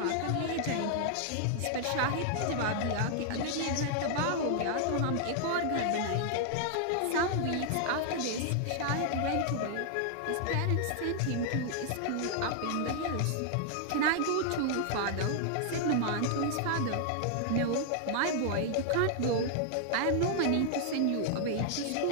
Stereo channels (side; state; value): both; different; correlation 0.00